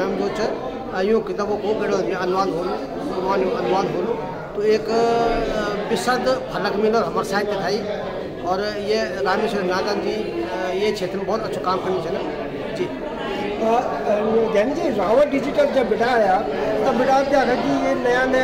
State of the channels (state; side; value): identical; both; correlation 1.00